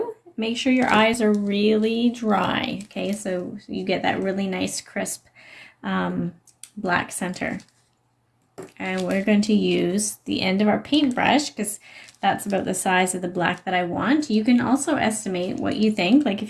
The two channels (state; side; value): identical; both; correlation 1.00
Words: make sure your eyes are really dry, okay, so you get that really nice crisp black center. And we're going to use the end of our paintbrush because that's about the size of the black that I want. You can also estimate what you think. Like